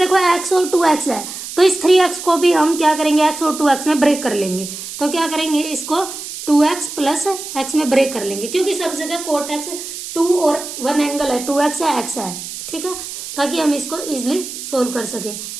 x और 2x है, तो इस 3x को भी हम क्या करेंगे x और 2x में ब्रेक कर लेंगे, तो क्या करेंगे इसको 2x प्लस x में ब्रेक कर लेंगे, क्योंकि सब जगह कोट x 2 और 1 एंगल है, 2x है x है। ठीक है, ताकि हम इसको इजिली सोल्व कर सके।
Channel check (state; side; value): noise; right; hiss, 9 dB below the sound